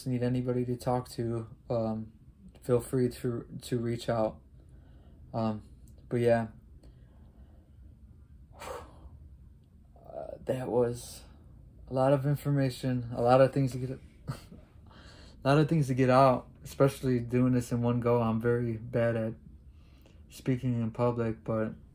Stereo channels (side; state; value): both; identical; correlation 1.00